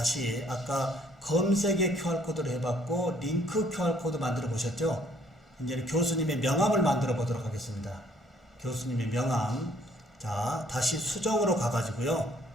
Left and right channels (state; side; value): normal; both; correlation 0.63